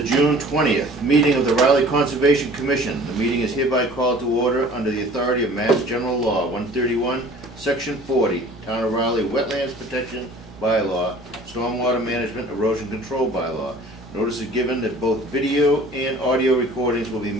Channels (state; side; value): normal; both; correlation 0.48